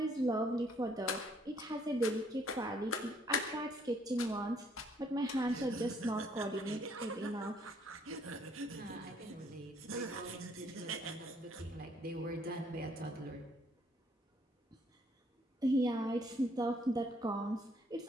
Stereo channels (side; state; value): both; normal; correlation 0.66